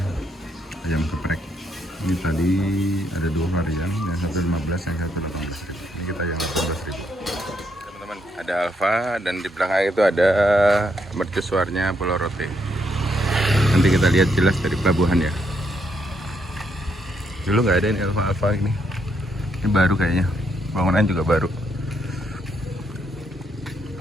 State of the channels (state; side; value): normal; both; correlation 0.75